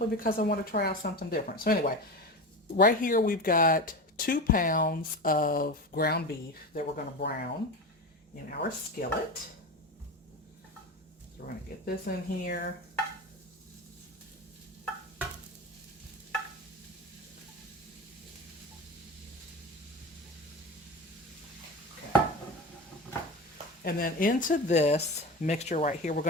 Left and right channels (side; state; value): both; normal; correlation 0.25